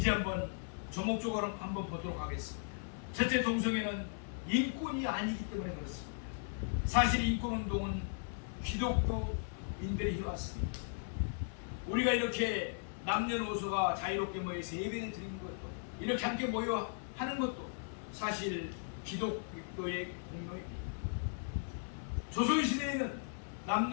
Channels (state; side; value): silent; right; 53 dB below the other